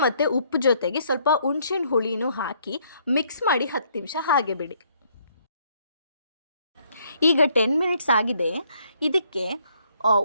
ಮತ್ತು ಉಪ್ಪು ಜೊತೆಗೆ ಸ್ವಲ್ಪ ಹುಣಸೆಹಣ್ಣು ಹುಳಿನೂ ಹಾಕಿ ಮಿಕ್ಸ್ ಮಾಡಿ 10 ನಿಮಿಷ ಹಾಗೆ ಬಿಡಿ. ಈಗ 10 ಮಿನಿಟ್ಸ್ ಆಗಿದೆ. ಇದಕ್ಕೆ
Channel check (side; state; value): both; inverted; correlation -0.68